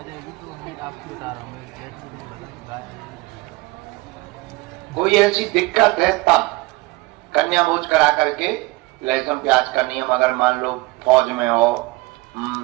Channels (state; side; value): quieter; left; 22.4 dB